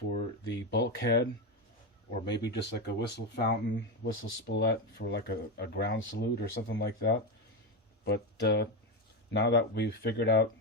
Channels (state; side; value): normal; both; correlation 0.13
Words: the bulkhead, or maybe just like a whistle fountain, whistle spoulette for like a ground salute or something like that. But now that we've figured out